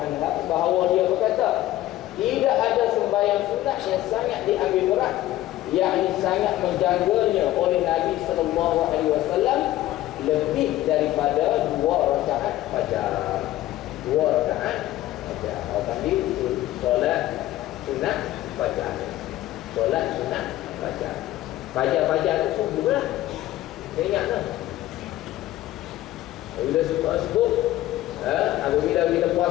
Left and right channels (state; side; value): quieter; right; 15.0 dB